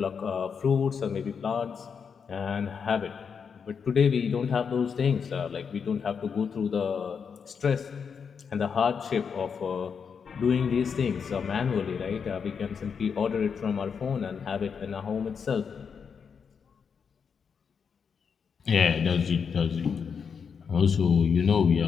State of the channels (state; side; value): quieter; right; 6.4 dB